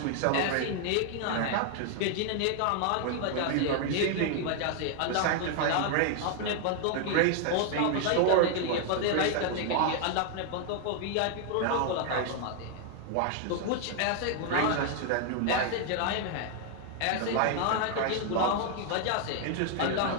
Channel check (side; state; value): both; different; correlation 0.00